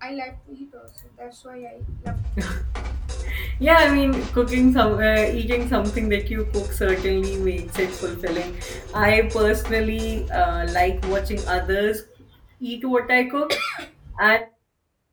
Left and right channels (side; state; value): both; identical; correlation 1.00